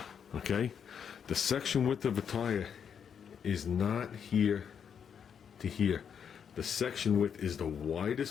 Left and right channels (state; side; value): quieter; right; 7.6 dB